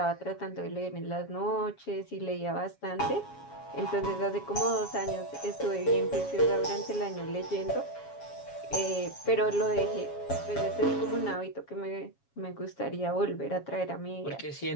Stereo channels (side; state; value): right; late; 7.2 ms